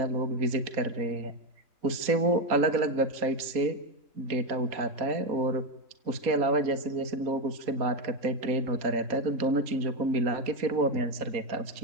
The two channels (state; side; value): late; left; 4.1 ms